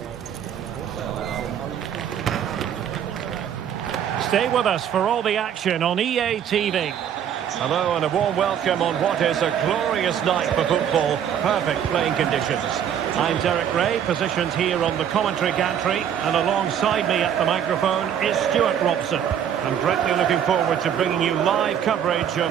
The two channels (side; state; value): left; quieter; 9.1 dB